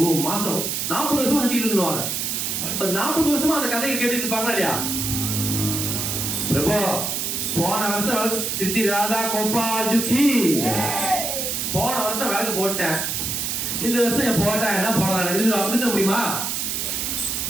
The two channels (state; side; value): noise; right; hiss, 1 dB below the sound